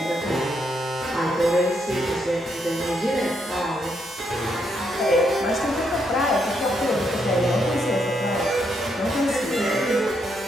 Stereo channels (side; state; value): both; normal; correlation 0.77